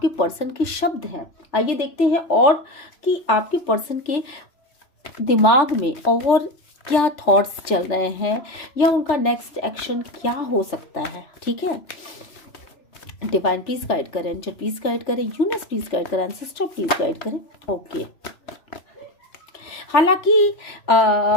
पर्सन के शब्द हैं। आइए देखते हैं और कि आपके पर्सन के दिमाग में और क्या थॉट्स चल रहे हैं, या उनका नेक्स्ट एक्शन क्या हो सकता है। ठीक है, डिवाइन प्लीज गाइड करें, एंजल प्लीज गाइड करें, यूनिवर्स प्लीज गाइड करें, एंसेस्टर प्लीज गाइड करें। ओके, हालांकि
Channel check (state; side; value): late; right; 3.4 ms